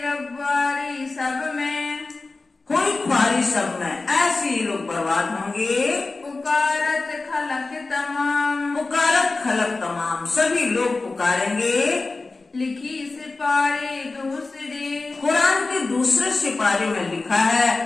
रब्बारी सब में, कोई ख्वारी सब में, ऐसे ही लोग बर्बाद होंगे। पुकारत खलक तमाम, पुकारत खलक तमाम, सभी लोग पुकारेंगे। लिखी सिपारे दूसरे, कुरान के दूसरे सिपारे में लिखा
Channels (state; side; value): quieter; right; 3.6 dB